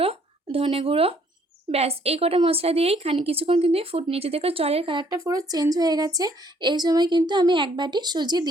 ধনে গুঁড়ো। ব্যাস এই কটা মশলা দিয়েই কিছুক্ষণ কিন্তু ফুট নিচে। দেখো জলের কালারটা পুরো চেঞ্জ হয়ে গেছে। এই সময় কিন্তু আমি এক বাটি সুজি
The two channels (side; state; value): both; normal; correlation 0.64